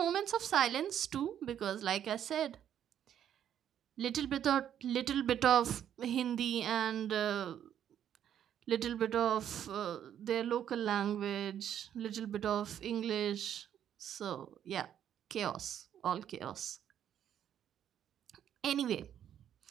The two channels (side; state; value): left; quieter; 10.0 dB